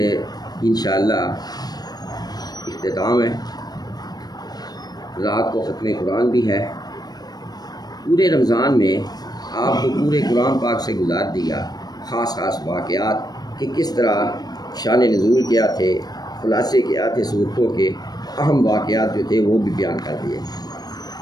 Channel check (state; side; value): late; right; 0.19 ms